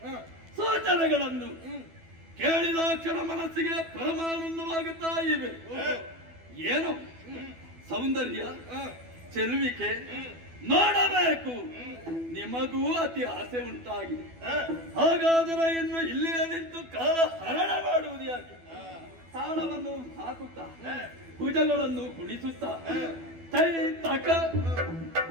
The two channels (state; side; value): late; left; 12 ms